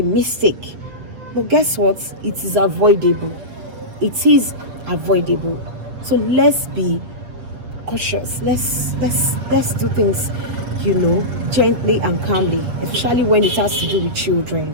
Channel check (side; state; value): left; late; 7.9 ms